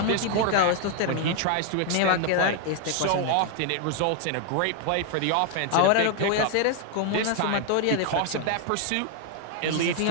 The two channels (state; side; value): different; both; correlation 0.00